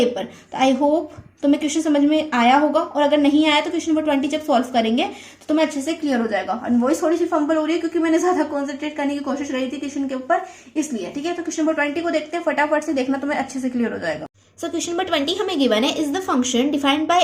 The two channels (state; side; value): identical; both; correlation 1.00